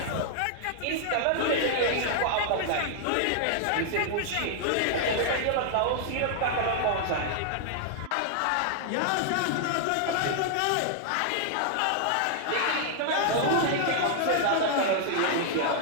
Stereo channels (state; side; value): different; both; correlation 0.00